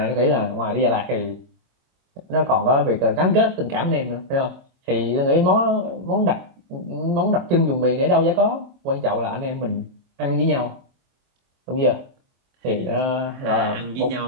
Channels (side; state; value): left; late; 23 ms